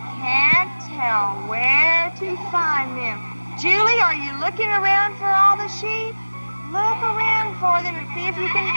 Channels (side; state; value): both; inverted; correlation -1.00